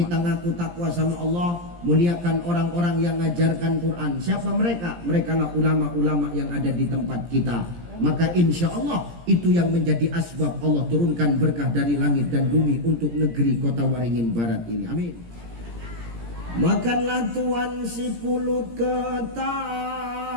ngaku takwa sama Allah, muliakan orang-orang yang ngajarkan Quran. Siapa mereka? Mereka lah ulama-ulama yang ada di tempat kita. Maka insya Allah itu yang menjadi asbab Allah turunkan berkah dari langit dan bumi untuk negeri Kota Waringin Barat ini. Amin. Makanlah tuan si pulut ketan.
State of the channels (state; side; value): late; left; 17 ms